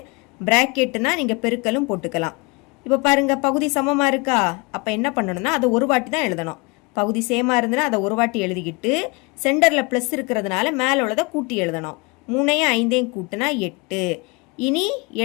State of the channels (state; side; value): quieter; right; 27.9 dB